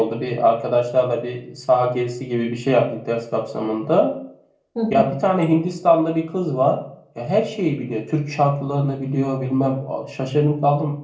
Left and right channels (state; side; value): identical; both; correlation 1.00